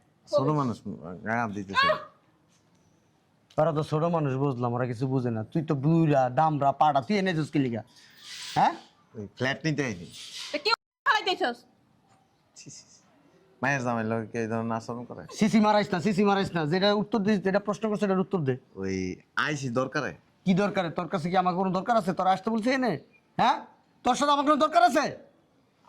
ছোট মানুষ গায়ে হাত দিতেছে ওরা তো ছোট মানুষ, বুঝলাম, ওরা কিছু বুঝে না। তুই তো বুড়া দামরা পাড়া, তুই এনে যাস কি লিগা? হ্যাঁ ওই ফ্ল্যাট নিতে আইনি তা কি খাইতেছস? মায়ের জামাই লোকে এই ধরনের আচরণ করে। সিসি মারাইস না, সিসি মারাইস না। যেটা উত্তর দিস, যেটা প্রশ্ন করছে এটার উত্তর দে। ওই আইসি দরকারে কি দরকার? তোর কাছে কি আমার কোনো দরকার আছে? তোর আসতে বলছে এনে? হ্যাঁ, তোর সাথে আমার কোনো দরকার আছে?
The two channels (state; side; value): identical; both; correlation 1.00